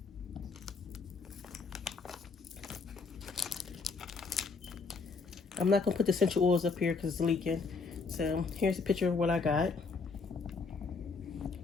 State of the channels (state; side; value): quieter; right; 4.6 dB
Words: I'm not going to put the essential oils up here because it's leaking. So here's a picture of what I got.